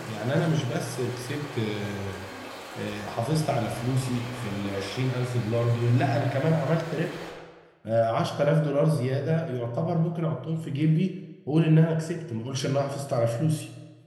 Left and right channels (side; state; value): both; identical; correlation 1.00